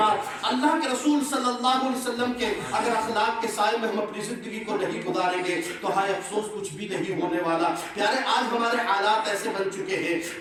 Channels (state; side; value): identical; both; correlation 1.00